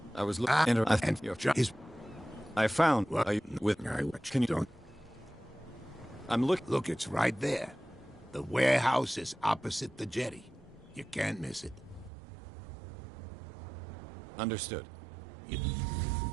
I was looking. I think your is. I found. What? With. Can you don't? I'm looking. Look, it's right there. The warehouse is opposite the jetty. You can't miss it. Understood.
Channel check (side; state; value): left; drops out; at 12.1 s